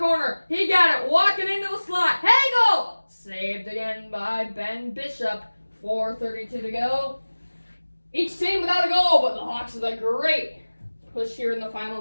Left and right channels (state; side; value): inverted; both; correlation -1.00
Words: He got it. Walking into the slot. Hagel! Saved again by Ben Bishop. 4:32 to go. Each team without a goal, but the Hawks with a great push here in the